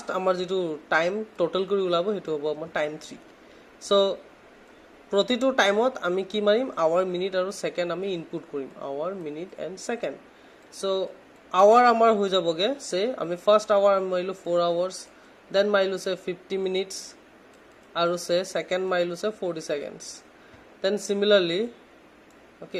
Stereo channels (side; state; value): both; identical; correlation 1.00